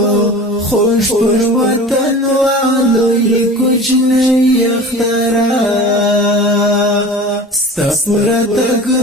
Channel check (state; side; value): normal; both; correlation 0.38